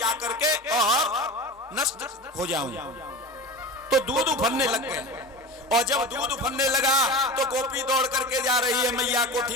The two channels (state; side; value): normal; both; correlation 0.30